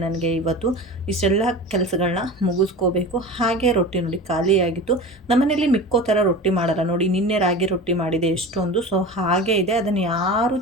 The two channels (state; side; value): normal; both; correlation 0.32